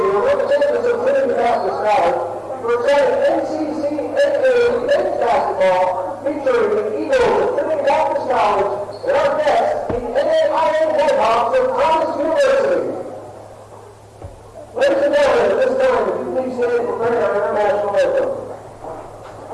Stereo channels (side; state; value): both; identical; correlation 1.00